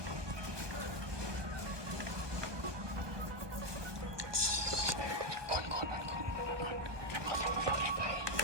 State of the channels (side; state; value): left; late; 1.2 ms